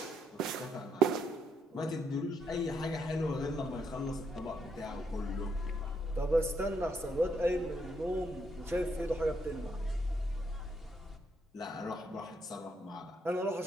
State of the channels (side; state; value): both; normal; correlation 0.75